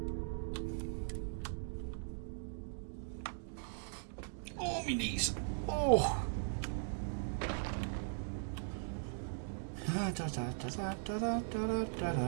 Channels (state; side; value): silent; left; digital silence